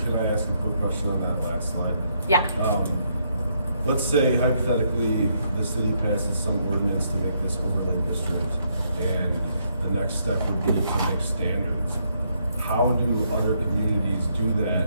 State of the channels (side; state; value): both; inverted; correlation -0.75